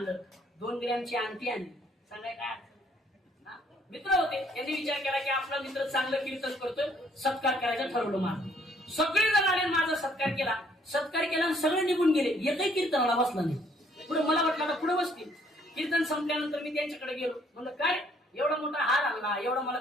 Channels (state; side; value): normal; both; correlation 0.64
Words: 2 ग्रॅमची अंगठी आणली. सांगाय काय मित्र होते. त्यांनी विचार केला की आपला मित्र चांगलं कीर्तन करतोय, सत्कार करायचं ठरवलं. माझं सगळे जण आले, माझा सत्कार केला आणि सगळे निघून गेले. एकही कीर्तनाला बसला नाही. पुढे मला वाटलं आता पुढे बसतील. कीर्तन संपल्यानंतर मी त्यांच्याकडे गेलो. म्हणलं काय एवढा मोठा हार आणला, एवढा मला